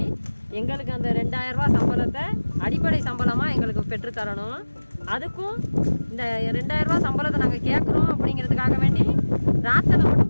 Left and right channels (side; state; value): both; inverted; correlation -1.00